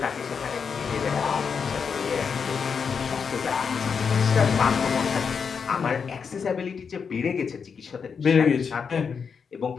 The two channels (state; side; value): quieter; right; 6.1 dB